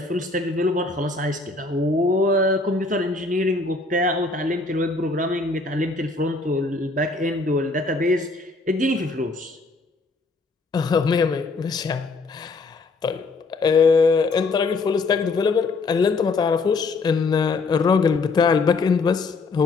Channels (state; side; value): quieter; right; 3.7 dB